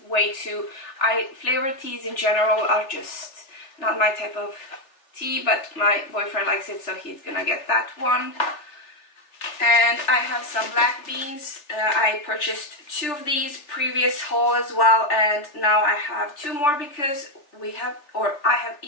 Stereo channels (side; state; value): right; late; 3.4 ms